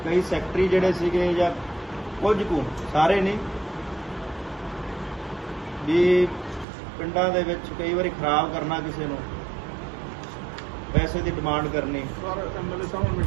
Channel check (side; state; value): left; drops out; at 6.7 s